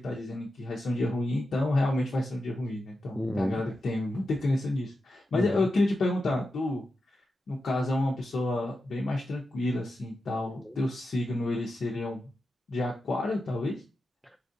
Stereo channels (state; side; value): normal; both; correlation 0.90